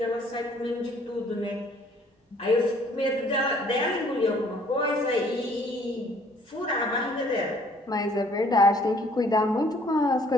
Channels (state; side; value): normal; both; correlation 0.59